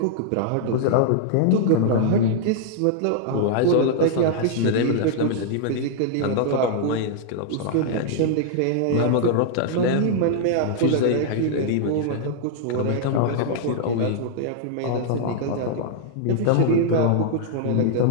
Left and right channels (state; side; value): different; both; correlation -0.01